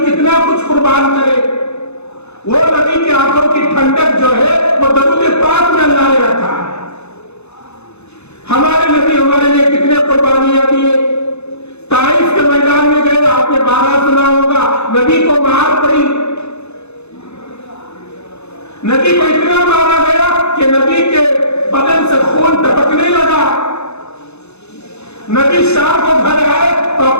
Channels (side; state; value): right; late; 0.81 ms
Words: کتنا کچھ قربان کرے۔ وہ نبی کی آنکھوں کی ٹھنڈک جو ہے وہ درود پاک میں اللہ نے رکھا ہے۔ ہمارے نبی ہمارے لیے کتنے قربانیاں دیے۔ طائف کے میدان میں گئے، آپ نے 12 سنا ہوگا، نبی کو مار پڑی، نبی کو اتنا مارا گیا کہ نبی کے بدن سے خون ٹپکنے لگا۔ نبی شام کو گھر آئے تو